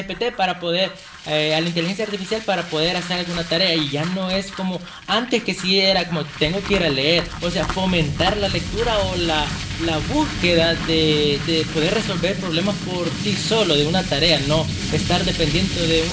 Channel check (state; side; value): identical; both; correlation 1.00